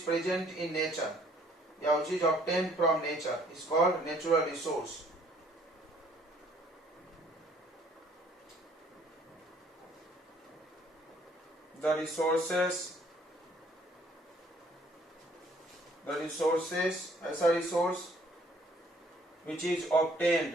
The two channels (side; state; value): both; normal; correlation 0.61